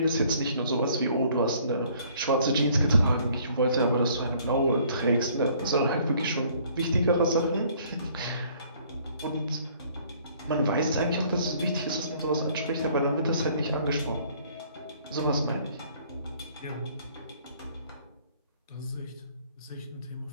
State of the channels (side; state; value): both; inverted; correlation -0.59